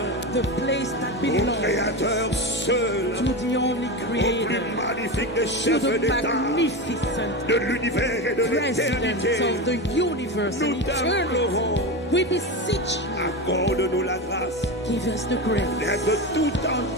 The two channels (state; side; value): normal; both; correlation 0.20